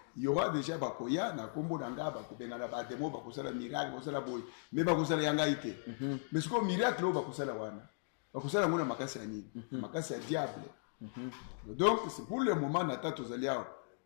il y aura déjà bakoya na kombo nanga bakobenga na ba demo bakosala miracle, bakosala boy. Mais bakosala yanga ite. Mais ce que miracle o bakosala wana. Bakosala ngona makasi ya nini makasi ya diable donc c'est pour le moment nata tozali awa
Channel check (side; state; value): right; silent; digital silence